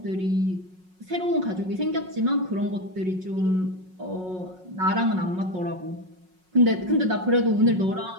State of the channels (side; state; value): left; late; 5.5 ms